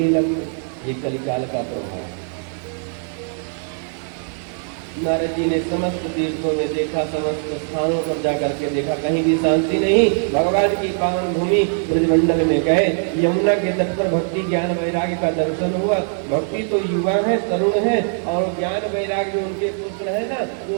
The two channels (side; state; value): left; silent; 60 dB below the other